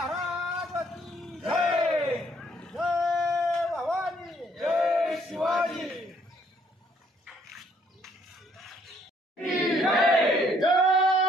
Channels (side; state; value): both; normal; correlation 0.66